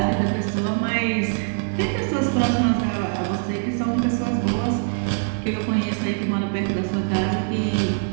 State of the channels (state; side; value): silent; left; digital silence